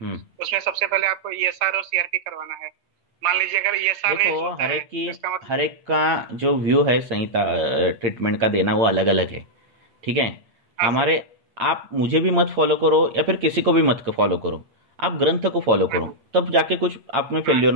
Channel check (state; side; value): late; left; 8.8 ms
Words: उसमें सबसे पहले आपको ईएसआर और सीआरपी करवाना है। मान लीजिए अगर ईएसआर देखो, हर एक का जो व्यू है संहिता ट्रीटमेंट का देना वो अलग अलग है। ठीक है, हमारे आप मुझे भी मत फॉलो करो या फिर किसी को भी मत फॉलो करो, आप ग्रंथ को फॉलो करो, तब जाके कुछ आप में फेल्योर